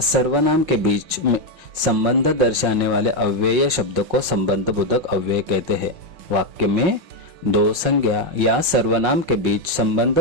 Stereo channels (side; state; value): left; late; 5.5 ms